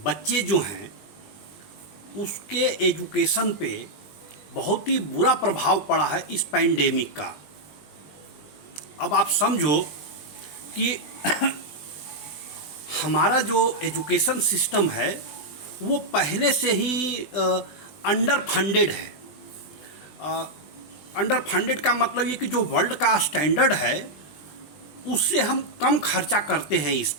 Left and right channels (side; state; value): right; late; 20 ms